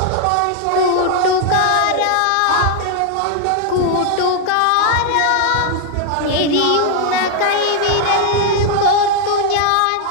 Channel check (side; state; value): both; different; correlation 0.00